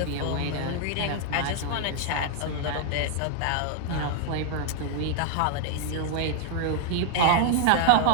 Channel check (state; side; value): different; both; correlation 0.00